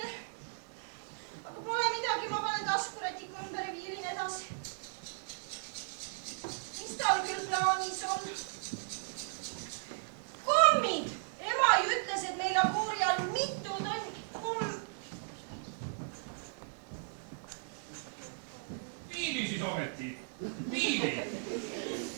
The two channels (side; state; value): left; silent; digital silence